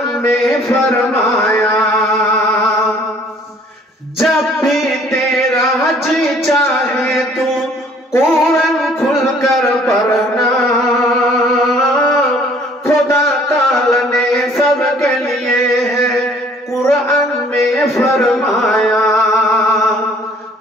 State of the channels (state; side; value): normal; both; correlation 0.57